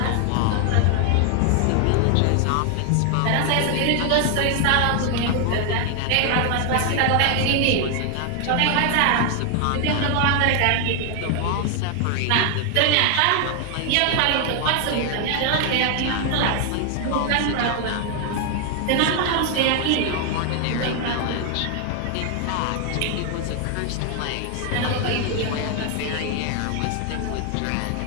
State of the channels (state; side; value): different; both; correlation 0.00